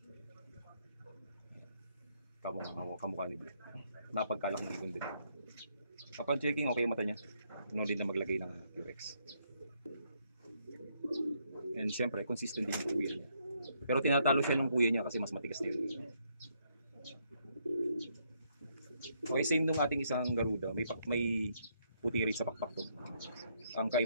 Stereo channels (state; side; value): inverted; both; correlation -0.73